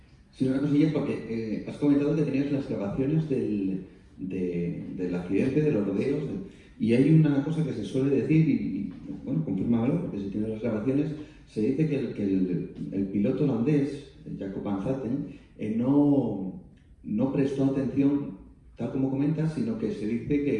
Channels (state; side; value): identical; both; correlation 1.00